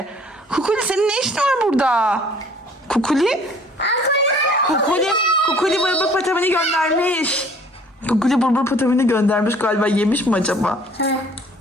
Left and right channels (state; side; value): normal; both; correlation 0.54